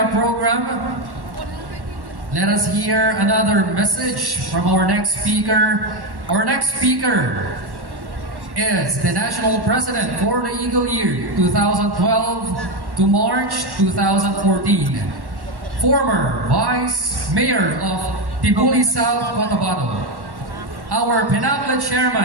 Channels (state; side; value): late; left; 1.1 ms